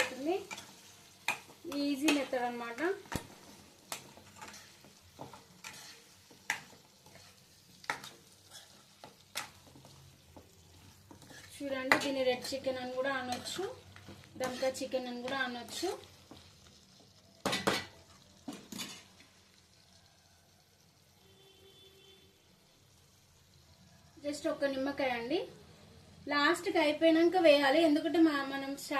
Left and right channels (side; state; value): both; identical; correlation 1.00